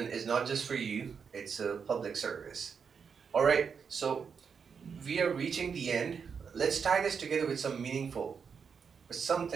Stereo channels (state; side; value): quieter; left; 6.3 dB